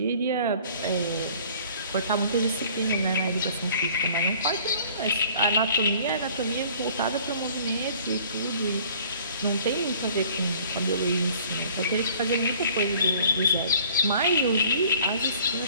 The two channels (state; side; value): inverted; both; correlation -0.52